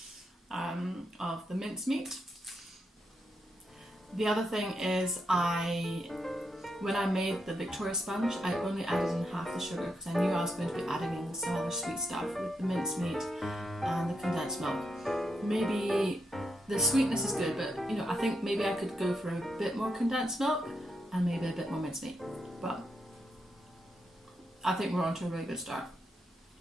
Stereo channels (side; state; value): both; normal; correlation 0.83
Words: of the mincemeat. The other thing is when I made the Victoria sponge, I only added in half the sugar because I knew I was going to be adding in some other sweet stuff with the mincemeat and the condensed milk. Maybe the sweetness is good, but you know, I think maybe I could go for a bit more condensed milk and maybe a bit more mincemeat. But I think we're on to a really good start.